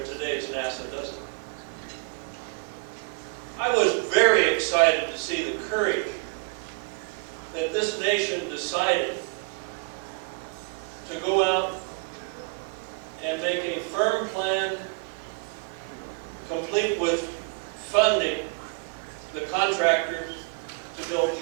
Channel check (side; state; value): left; quieter; 33.8 dB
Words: today's NASA, does it? I was very excited to see the courage that this nation decided to go out and make a firm plan, complete with funding the contractors to build